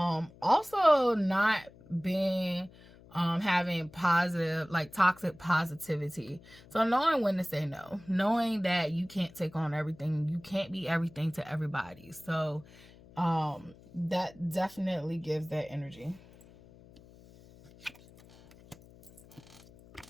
not being having positive, like toxic positivity. So knowing when to say no, knowing that you can't take on everything, you can't be everything to everybody. So that definitely gives that energy.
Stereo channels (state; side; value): noise; left; hum, 23 dB below the sound